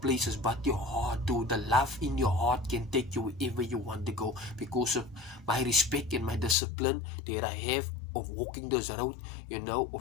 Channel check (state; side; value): drops out; right; at 6.6 s